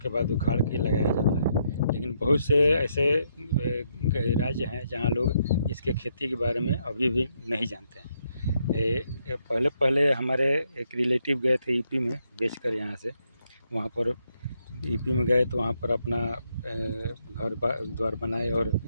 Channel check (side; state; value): both; inverted; correlation -0.76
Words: बाद उखाड़ के लगाया जाता है। लेकिन बहुत से ऐसे राज्य हैं जहाँ लोग इसके खेती के बारे में अभी भी नहीं जानते हैं। पहले हमारे एक रिलेटिव गए थे यूपी में बेचकर यहाँ से। वहाँ पर यूपी में गए तो वहाँ पर अपना घर द्वार बनाए और